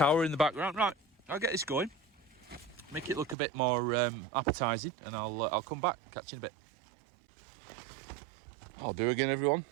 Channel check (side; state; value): left; drops out; at 3.4 s